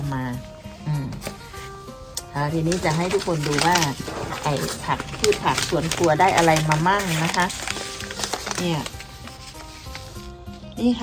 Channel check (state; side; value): identical; both; correlation 1.00